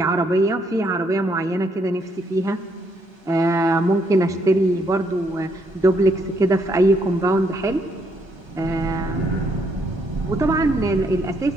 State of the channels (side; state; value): both; normal; correlation 0.73